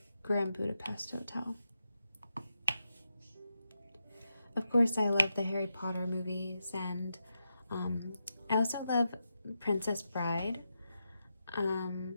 Grand Budapest Hotel. Of course, I love the Harry Potter movies, and I also love Princess Bride,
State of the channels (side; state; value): both; inverted; correlation -0.87